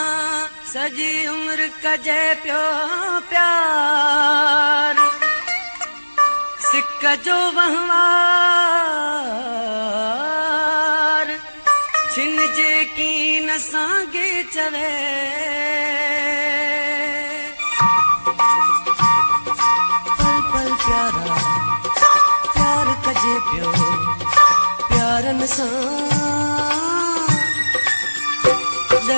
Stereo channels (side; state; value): both; inverted; correlation -1.00